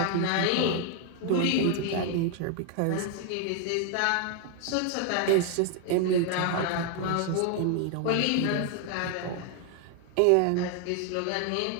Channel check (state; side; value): different; both; correlation 0.00